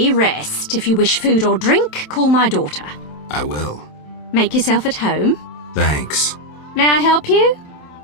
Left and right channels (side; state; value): right; late; 27 ms